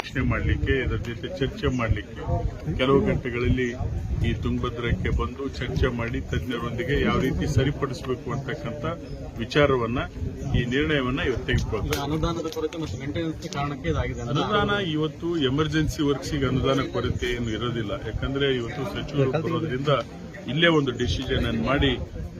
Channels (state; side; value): identical; both; correlation 1.00